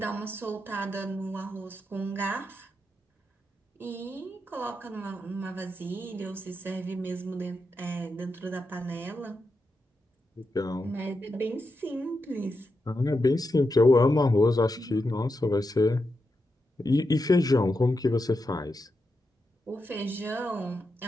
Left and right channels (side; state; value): both; normal; correlation 0.86